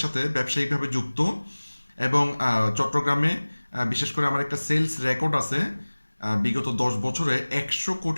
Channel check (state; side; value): inverted; both; correlation -1.00